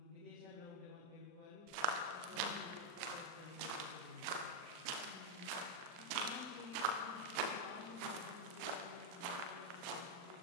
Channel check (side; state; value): left; late; 40 ms